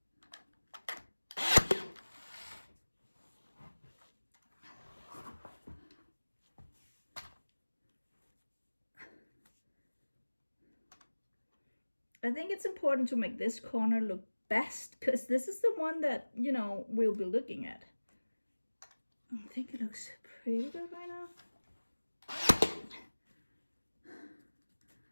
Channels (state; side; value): inverted; both; correlation -1.00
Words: I think it's important to make this corner look best, because this is the one that, you know, we'll be looking at. I think it looks pretty good right now.